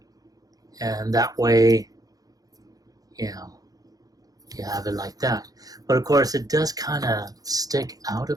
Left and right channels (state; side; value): late; left; 0.18 ms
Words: And that way, you have it like that. But of course, it does kind of stick out a